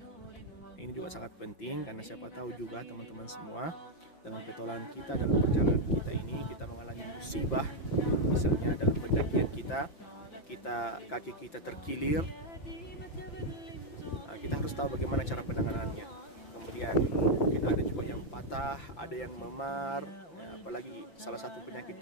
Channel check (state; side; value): late; right; 5.9 ms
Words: Ini juga sangat penting, karena siapa tahu juga teman-teman semua dalam petualangan kita, dalam perjalanan kita ini, kita mengalami musibah, misalnya dalam pendakian kita kaki kita terkilir, kita harus tahu bagaimana cara penanganannya. Kemudian mungkin ada juga yang patah, ada yang memar, apalagi salah satu penyakit